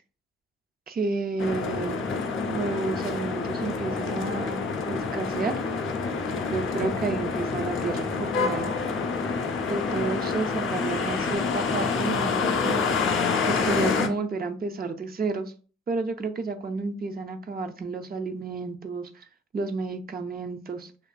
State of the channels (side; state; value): both; normal; correlation 0.48